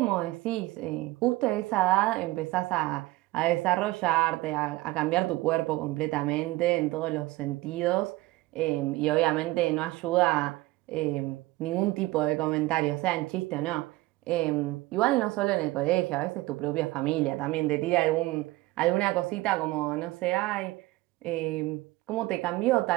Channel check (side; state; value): left; quieter; 19.4 dB